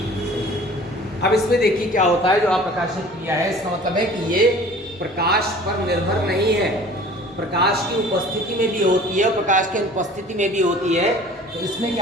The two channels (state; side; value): normal; both; correlation 0.47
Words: अब इसमें देखिए क्या होता है, जो अप्रकाशित क्रिया है इसका मतलब है कि ये प्रकाश पर निर्भर नहीं है, प्रकाश की उपस्थिति में भी होती है, प्रकाश की अनुपस्थिति में भी होती है। तो इसमें